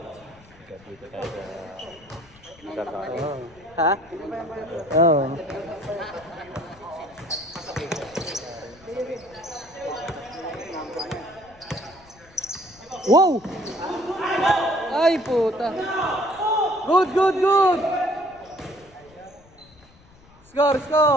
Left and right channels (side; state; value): left; noise; rumble, 26 dB below the sound